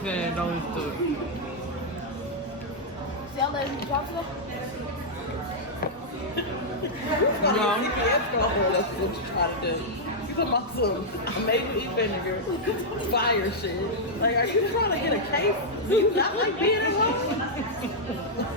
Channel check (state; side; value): normal; both; correlation -0.06